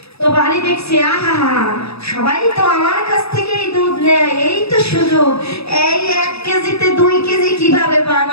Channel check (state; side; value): late; right; 0.78 ms